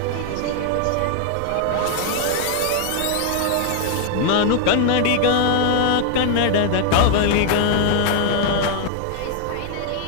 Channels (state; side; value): different; both; correlation 0.00